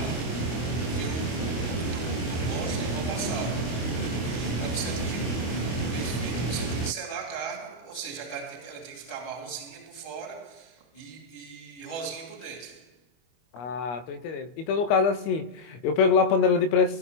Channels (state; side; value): late; right; 25 ms